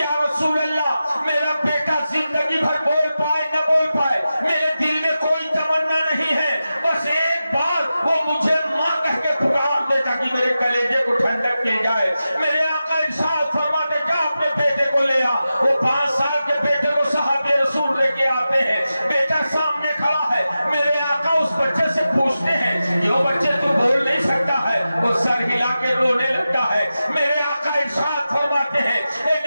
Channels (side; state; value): both; inverted; correlation -0.92